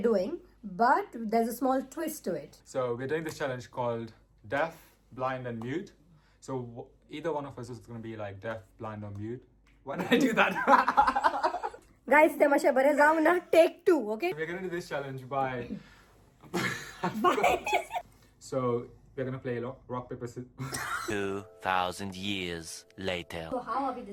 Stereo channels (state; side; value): identical; both; correlation 1.00